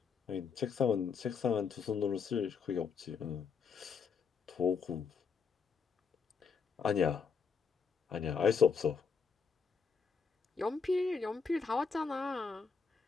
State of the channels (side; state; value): right; quieter; 5.6 dB